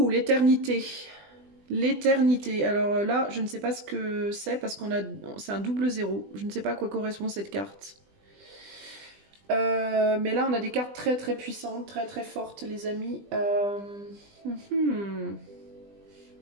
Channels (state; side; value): late; left; 20 ms